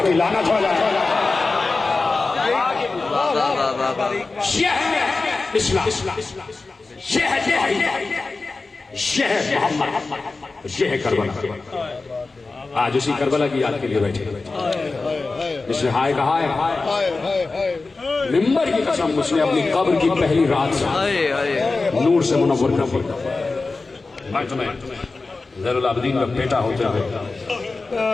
کی لعنت ہو جائے. یہ ہے اسلام, یہ ہے محمد, یہ ہے کربلا. آج اسی کربلا کی یاد کے لیے بیٹھے, جس نے ہائے کہا ہے ممبر کی قسم, اس نے اپنی قبر کی پہلی رات سے نور سے منور کر دیا. میں تمہیں زین العابدین کا بیٹا ہوتے ہوئے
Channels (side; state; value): right; quieter; 3.7 dB